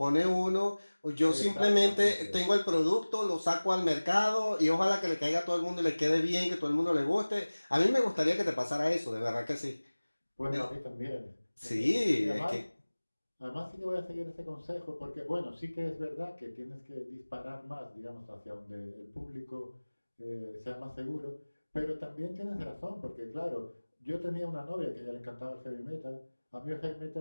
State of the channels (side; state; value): both; inverted; correlation -1.00